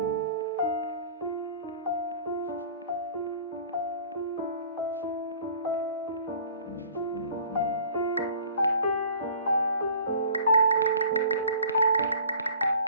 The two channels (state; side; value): inverted; both; correlation -0.48